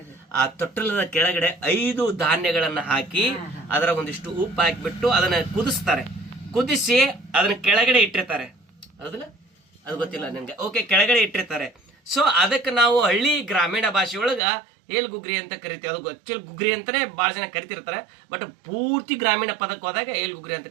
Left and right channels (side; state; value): left; drops out; at 14.4 s